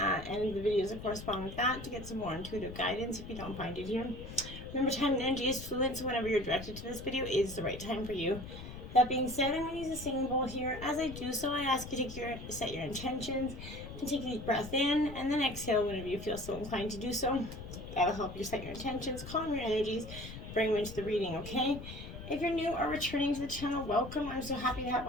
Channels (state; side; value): noise; left; rumble, 11 dB below the sound